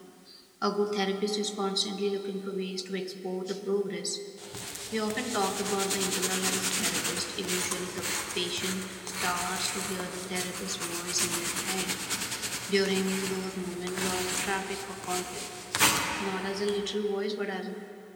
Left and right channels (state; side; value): identical; both; correlation 1.00